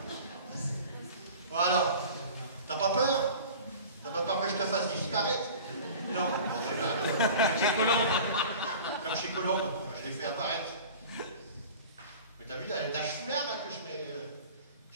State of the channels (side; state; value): both; inverted; correlation -0.40